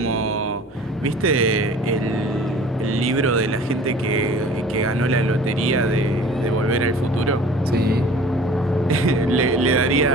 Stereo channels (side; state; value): both; normal; correlation 0.46